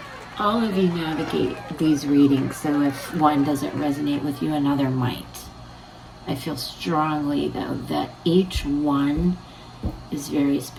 all of you navigate these readings, so if one doesn't resonate with you, another might. I feel strongly, though, that each one is very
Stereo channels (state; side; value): identical; both; correlation 1.00